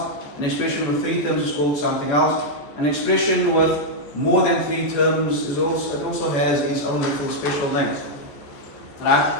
an expression with three terms is called something else, an expression with more than three terms it also has its own little special name. Right?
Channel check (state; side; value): late; right; 14 ms